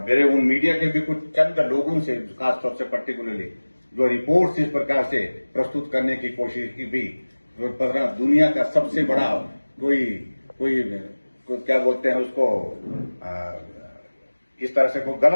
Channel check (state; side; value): inverted; both; correlation -1.00